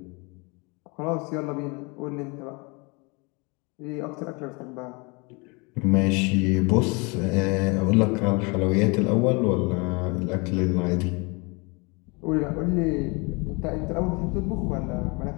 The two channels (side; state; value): right; quieter; 29.3 dB